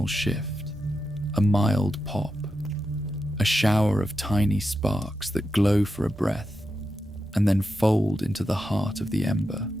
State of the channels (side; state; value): both; normal; correlation 0.88